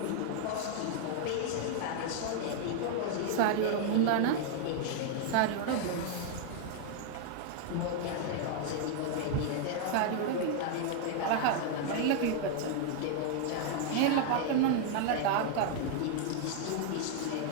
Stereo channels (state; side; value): different; both; correlation 0.00